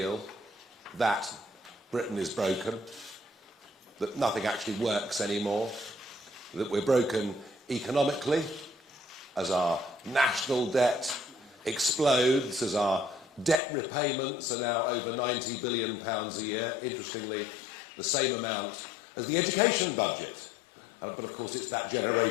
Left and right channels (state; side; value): drops out; right; at 13.6 s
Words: that Britain is broken, that nothing actually works anymore, that we're broken economically as our national debt explodes, as our debt repayments are now over £90 billion a year, interestingly the same amount as the education budget. But of course it's that